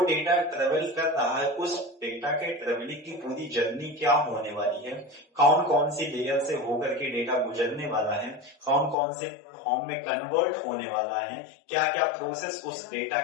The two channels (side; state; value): right; drops out; at 9.0 s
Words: ट्रेवल कर रहा है उस डेटा के ट्रेवलिंग की पूरी जर्नी क्या होने वाली है, कौन कौन सी लेयर से होकर के डेटा गुजरने वाला है, कौन कौन से फॉर्म में कन्वर्ट होने वाला है, क्या क्या प्रोसेस उस डेटा